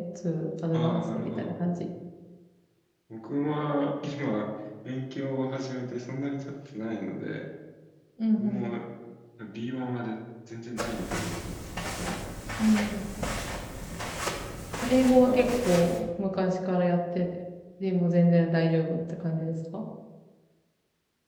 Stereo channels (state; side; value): identical; both; correlation 1.00